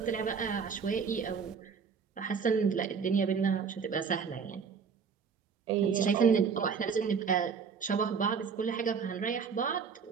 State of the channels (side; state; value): left; quieter; 6.0 dB